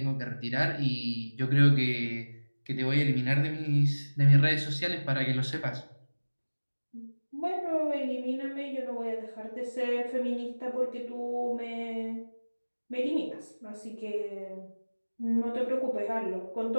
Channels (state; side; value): inverted; both; correlation -1.00